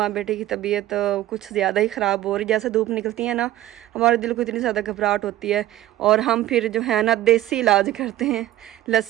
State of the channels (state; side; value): quieter; left; 14.3 dB